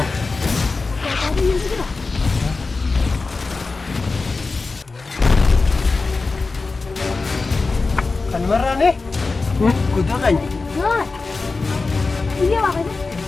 Marane? Kudu kan? Iya makanya.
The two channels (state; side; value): quieter; right; 3.9 dB